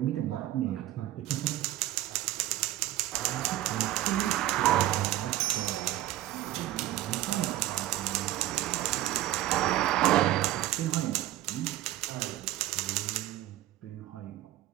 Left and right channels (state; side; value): quieter; left; 14.7 dB